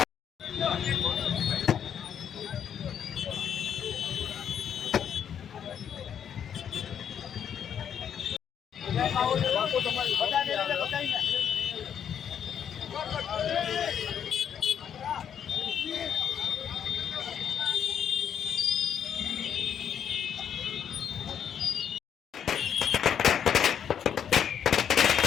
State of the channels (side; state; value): right; quieter; 8.6 dB